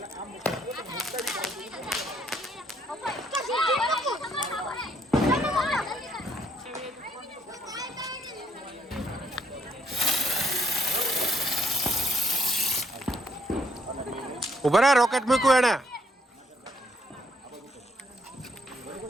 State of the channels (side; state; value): both; normal; correlation 0.70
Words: ઉભા રહે, રોકેટ મૂક્યું એને.